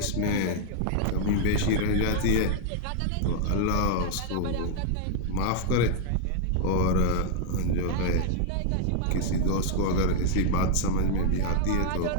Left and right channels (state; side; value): different; both; correlation 0.00